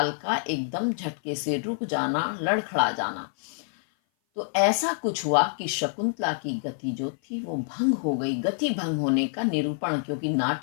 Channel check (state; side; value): silent; right; 56 dB below the other